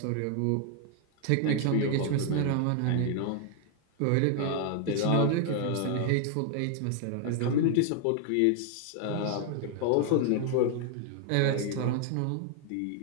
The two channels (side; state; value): both; different; correlation 0.00